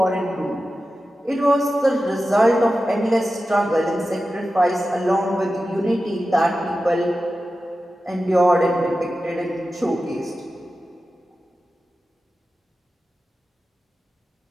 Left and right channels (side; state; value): both; normal; correlation 0.93